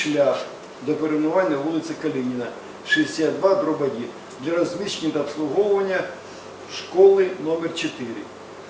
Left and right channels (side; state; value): both; identical; correlation 1.00